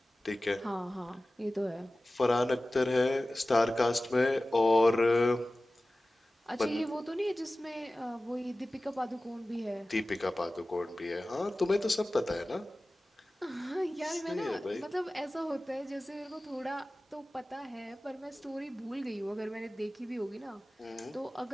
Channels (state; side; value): normal; both; correlation 0.97